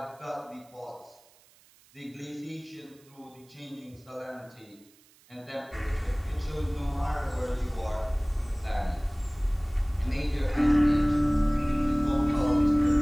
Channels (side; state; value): right; noise; hiss, 29 dB below the sound